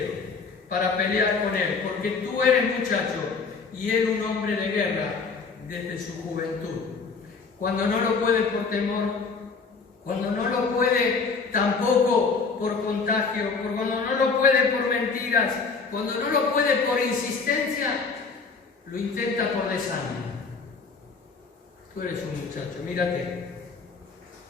para pelear con él, porque tú eres muchacho y él un hombre de guerra desde su juventud. Cuando no lo puede por temor, cuando no lo puede tampoco por contagio, cuando no lo puede por mentiras, cuando no lo puede por insistencia, lo intenta por desánimo. Tú eres un muchacho, mírate.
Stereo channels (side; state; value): right; quieter; 4.8 dB